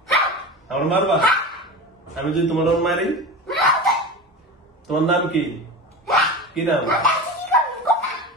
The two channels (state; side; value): normal; both; correlation 0.28